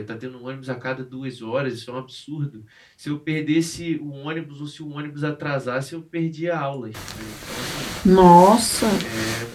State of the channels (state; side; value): identical; both; correlation 1.00